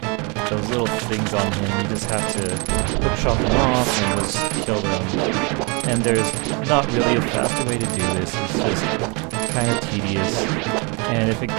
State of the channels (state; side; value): quieter; left; 30.9 dB